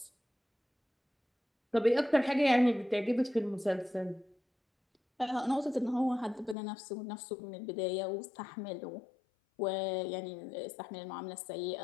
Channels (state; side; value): drops out; right; at 6.6 s